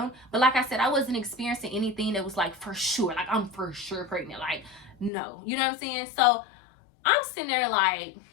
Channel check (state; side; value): drops out; right; at 5.1 s